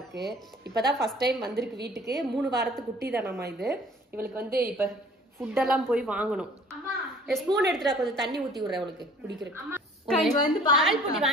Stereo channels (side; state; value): both; normal; correlation 0.51